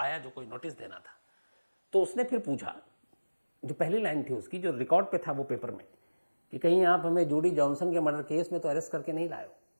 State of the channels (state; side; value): inverted; both; correlation -1.00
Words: जो कोई नोटिस देना था। तो उसने फिर पूछा, जो पहली लाइन थी उसकी, जो रिकॉर्ड पे था वो पेपर में, कि कहीं आप हमें जूडी जॉनसन के मर्डर केस में तो अरेस्ट करके नहीं लाए हो।